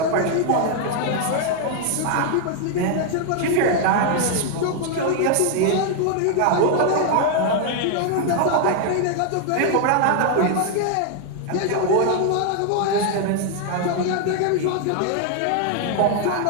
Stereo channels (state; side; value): different; both; correlation 0.00